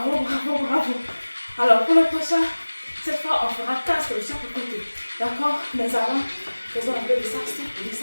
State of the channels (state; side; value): inverted; both; correlation -1.00